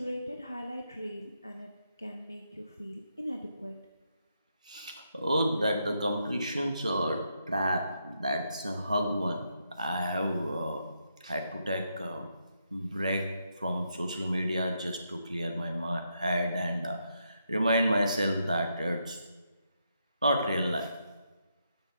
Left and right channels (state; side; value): inverted; both; correlation -0.80